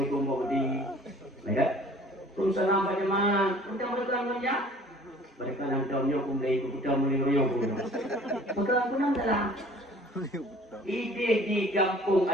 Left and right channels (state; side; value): normal; both; correlation 0.50